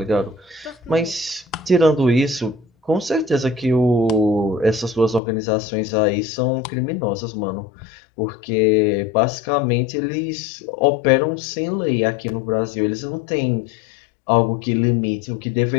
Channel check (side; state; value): right; drops out; at 5.2 s